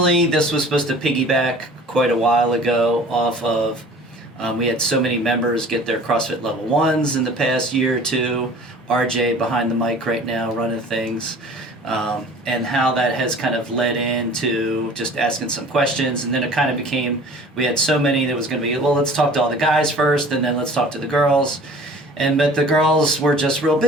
this was supposed to piggyback quite a while ago off of we had so many members get their CrossFit level 1s in the past year or two. RJ behind the mic right now running things. And how that has kind of led into just asking some questions. And then it kind of became, we had so many that was going to be, well, let's talk to all the guys first and then let's talk to the girls. But the girls were just real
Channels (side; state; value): both; normal; correlation 0.46